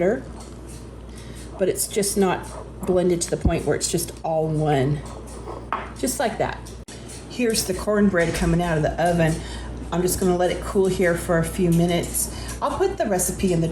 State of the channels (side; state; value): both; identical; correlation 1.00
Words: but it's just not blended to the point where it's just all one. Just like that. Here's the cornbread coming out of the oven. I'm just gonna let it cool here for a few minutes. I'll put the recipe in the